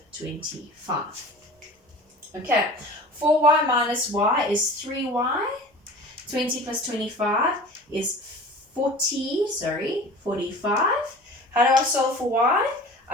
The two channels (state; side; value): normal; both; correlation 0.40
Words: 25. Okay, 4y minus y is 3y, 20 plus 25 is 45. How do I solve for y?